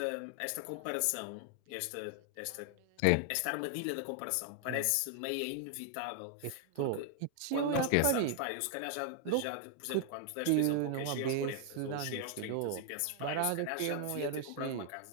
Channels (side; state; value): both; different; correlation 0.00